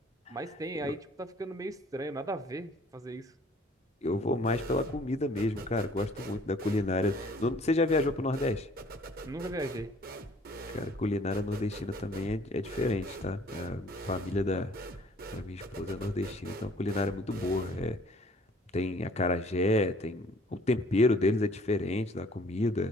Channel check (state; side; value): normal; both; correlation 0.56